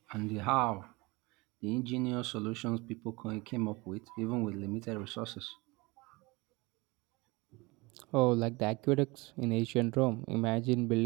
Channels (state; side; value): quieter; left; 24.5 dB